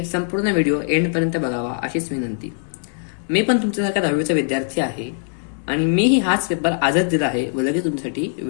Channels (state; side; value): silent; right; digital silence